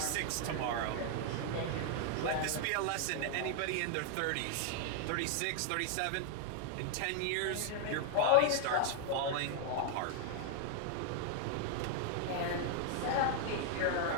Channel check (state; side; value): different; both; correlation 0.00